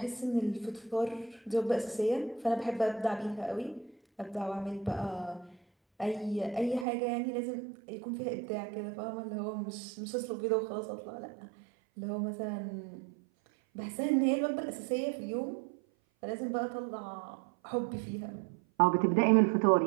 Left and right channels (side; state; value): left; drops out; at 6.9 s